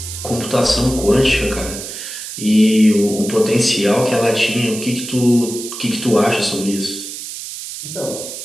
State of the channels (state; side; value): noise; right; hiss, 9 dB below the sound